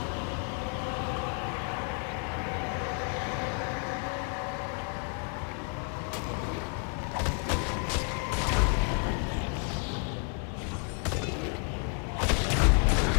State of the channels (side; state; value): right; quieter; 39.5 dB